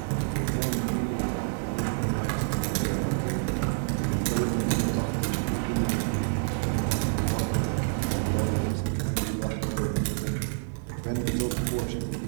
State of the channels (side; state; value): left; silent; 59 dB below the other